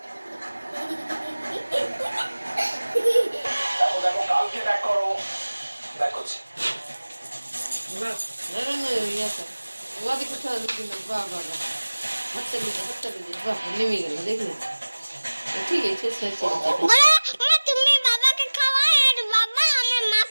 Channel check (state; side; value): inverted; both; correlation -1.00